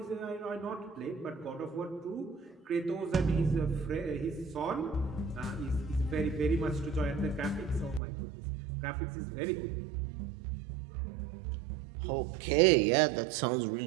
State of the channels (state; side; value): drops out; left; at 8.0 s